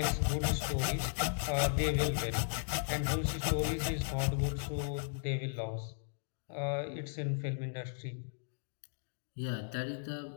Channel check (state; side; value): silent; right; digital silence